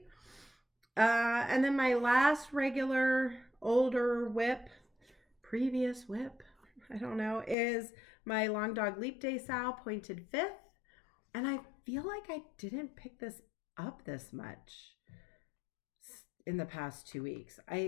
And then my last regular older previous whip, I don't know, is my Long Dog Leap Day Sow pointed 5th. And I feel like I didn't pick this up this much in the past 2 weeks.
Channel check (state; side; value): drops out; right; at 7.6 s